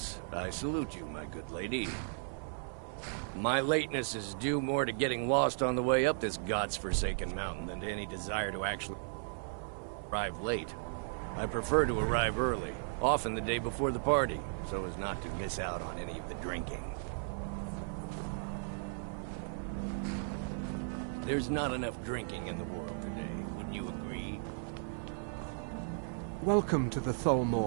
I salute you, my good lady. My lateness is due more to getting lost on the way up this god's-forsaken mountain than to any desire to actually arrive late. I prefer to arrive early, often the day before the party, so as not to miss out on any of the drinking. There's not enough drinking in the world today, wouldn't you agree? Welcome to the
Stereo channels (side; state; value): left; silent; 54 dB below the other